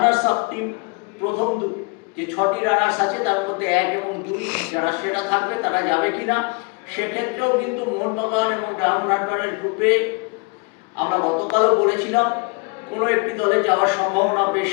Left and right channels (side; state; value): right; quieter; 31.6 dB